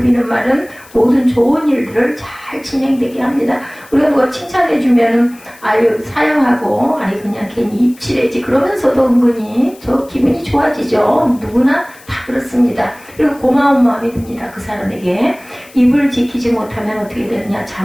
비는 말은 모든 좋은 일들을 잘 진행되게 합니다. 우리가 누가 칭찬해주면은 아유 사양하고 아유 그냥 괜히 입칠해지 그러면서도 은근히 저 기분이 좋아지죠. 누구나 다 그렇습니다. 그리고 고마운 마음이 듭니다. 그 사람에게. 입을 지키지 못하면 어떻게 되느냐.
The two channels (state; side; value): noise; left; hiss, 24 dB below the sound